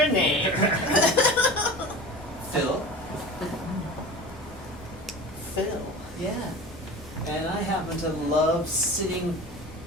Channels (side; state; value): both; normal; correlation 0.34